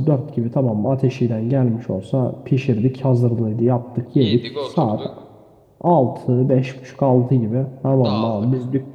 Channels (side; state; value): both; identical; correlation 1.00